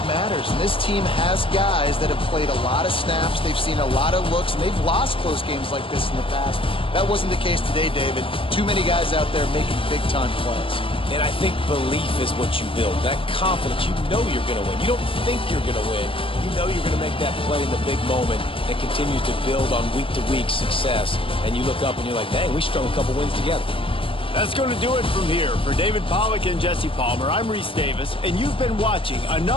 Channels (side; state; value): right; late; 0.26 ms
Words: matters, and this team has guys that have played a lot of snaps. They've seen a lot of looks, and they've lost close games like this in the past. That wasn't the case today, David. Too many guys out there making big-time plays. And I think belief is what you build. That confidence, you know you're going to win. You don't think you're going to win. You know you're going to make that play in the big moment that continues to build on week-to-week success. And you look up and you're like, dang, we strung a couple wins together. That's going to do it from here. For David Pollack and Jesse Palmer, I'm Reese Davis, and you've been watching